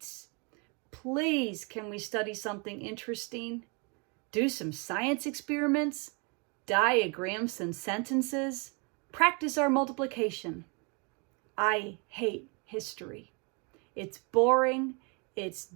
Please, can we study something interesting? Do some science experiments? Diagram some sentences? Practice our multiplication. I hate history. It's boring, it's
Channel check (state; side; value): quieter; left; 33.0 dB